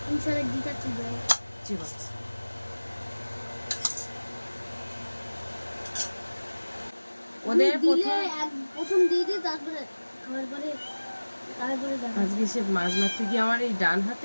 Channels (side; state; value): both; inverted; correlation -1.00